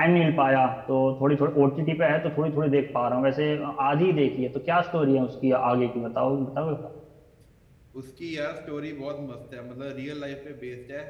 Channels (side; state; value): both; identical; correlation 1.00